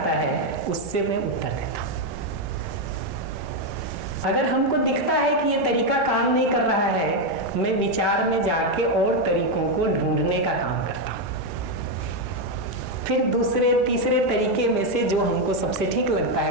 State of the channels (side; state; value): both; normal; correlation 0.04